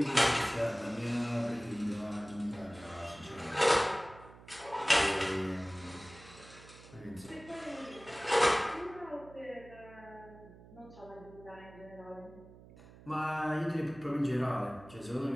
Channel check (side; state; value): right; noise; hum, 20 dB below the sound